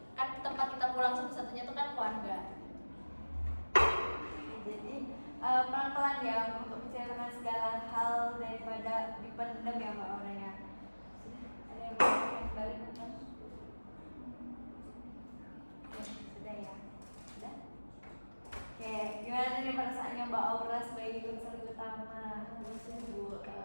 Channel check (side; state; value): both; inverted; correlation -1.00